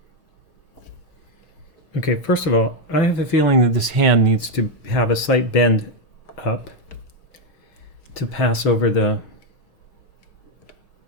Okay, first of all, I have a feeling that this hand needs to have a slight bend up to pass over the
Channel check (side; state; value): right; late; 6.3 ms